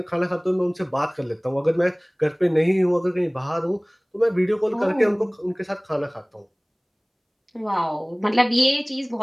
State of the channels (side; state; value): both; identical; correlation 1.00